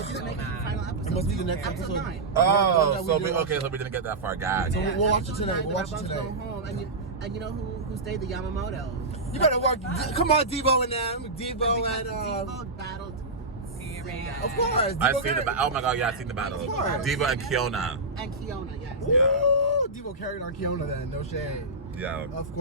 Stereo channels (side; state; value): left; quieter; 3.1 dB